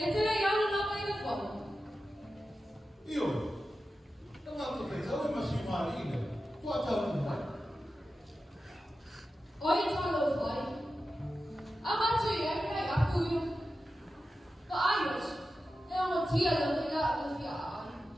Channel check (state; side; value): normal; both; correlation 0.92